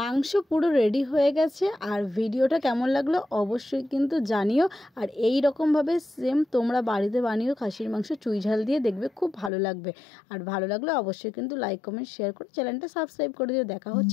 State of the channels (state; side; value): drops out; right; at 9.5 s